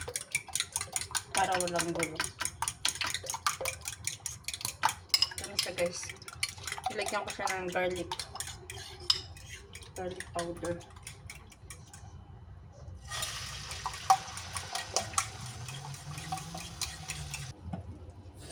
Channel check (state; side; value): identical; both; correlation 1.00